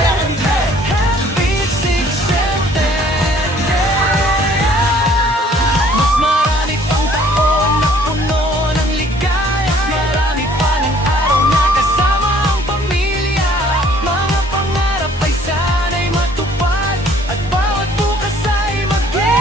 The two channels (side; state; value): both; normal; correlation 0.58